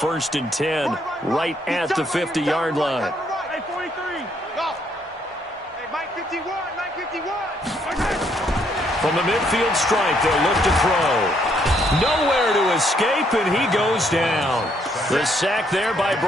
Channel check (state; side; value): normal; both; correlation 0.70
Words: and 10 right at the 50-yard line. Hey, 43. Go. Hey, Mike 51. Mike 51. From the midfield stripe, they'll look to throw. Nowhere to escape, and he goes down. The sack there by